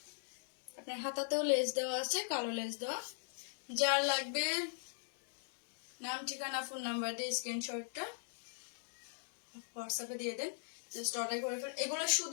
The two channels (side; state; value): right; silent; digital silence